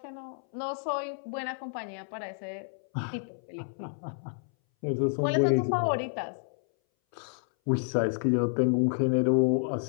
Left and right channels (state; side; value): silent; right; 58 dB below the other